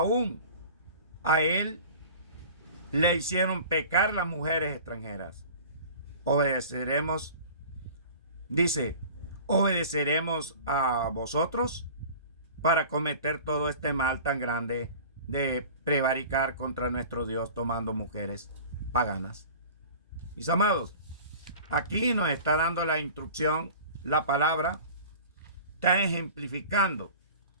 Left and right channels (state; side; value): inverted; both; correlation -0.41